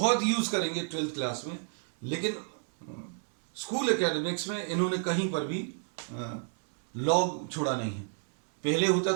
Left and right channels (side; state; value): left; silent; 57 dB below the other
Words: यूज करेंगे 12th क्लास में, लेकिन स्कूल एकेडमिक्स में इन्होंने कहीं पर भी लॉग छोड़ा नहीं है। पहले होता